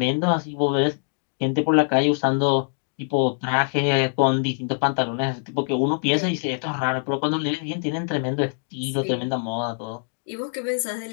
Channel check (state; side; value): silent; right; digital silence